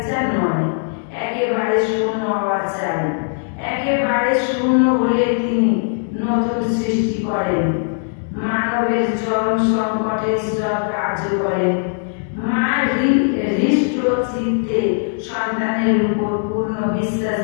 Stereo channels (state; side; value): silent; right; digital silence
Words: নয়, একেবারে শূন্য হওয়া চাই। একেবারে শূন্য হলে তিনি নতুন সৃষ্টি করেন। মানবের চরম সংকটে ঈশ্বর কার্য করেন। মা হৃষ্ট চিত্তে সন্তানের উপর পূর্ণ